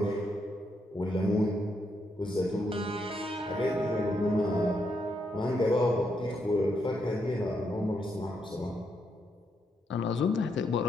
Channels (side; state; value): both; normal; correlation 0.79